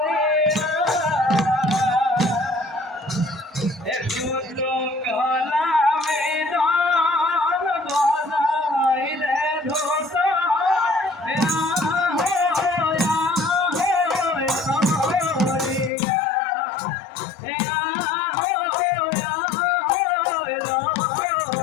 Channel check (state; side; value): drops out; right; at 15.9 s